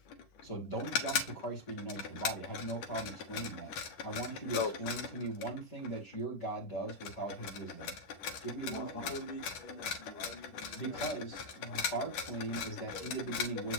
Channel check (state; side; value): late; right; 10 ms